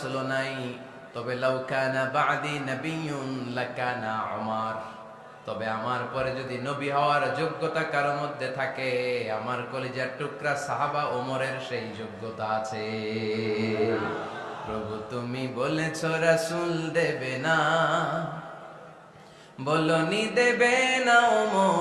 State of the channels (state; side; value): identical; both; correlation 1.00